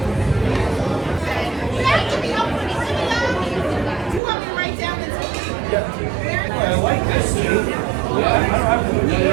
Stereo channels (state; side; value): drops out; left; at 4.2 s